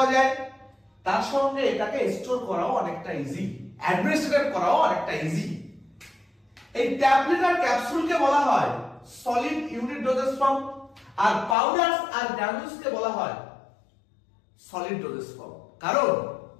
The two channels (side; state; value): right; drops out; at 11.6 s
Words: যায়, তার সঙ্গে এটাকে স্টোর করাও অনেকটা ইজি, অ্যাডমিনিস্ট্রেট করাও অনেকটা ইজি। এই ট্যাবলেট আর ক্যাপসুলকে বলা হয় সলিড ইউনিট ডোজেস ফর্ম, আর পাউডারস আর গ্রানুলসকে বলা হয় সলিড ডোজেস ফর্ম। কারণ